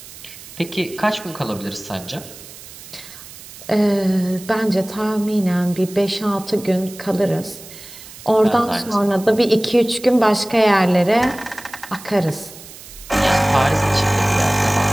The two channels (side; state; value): right; noise; hiss, 17 dB below the sound